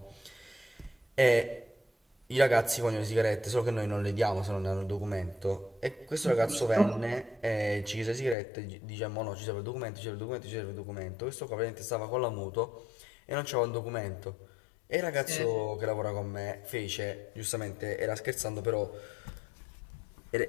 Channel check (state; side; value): drops out; right; at 8.3 s